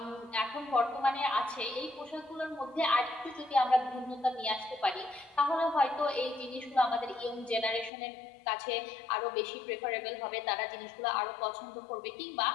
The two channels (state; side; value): drops out; right; at 7.9 s